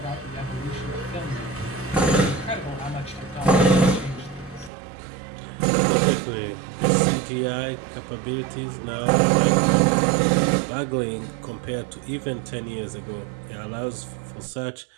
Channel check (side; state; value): left; drops out; at 4.7 s